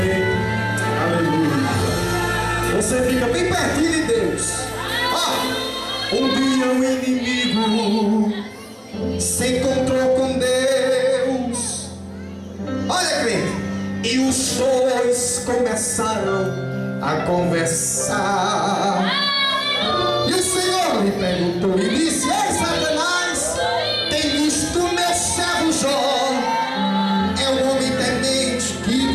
Aleluia. Você fica bem pertinho de Deus. Um dia o inimigo se encontrou com Deus. Olha, crente. E os dois começaram a conversar. E o Senhor lhe perguntou e disse: ei, Satanás, tem visto meu servo Jó? É um homem temente que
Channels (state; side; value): identical; both; correlation 1.00